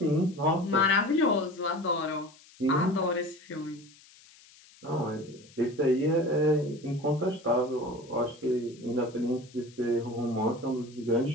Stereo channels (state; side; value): noise; left; hiss, 25 dB below the sound